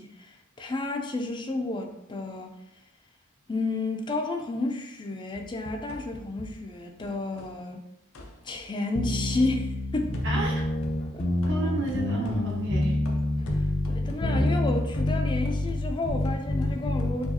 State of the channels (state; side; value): normal; both; correlation 0.80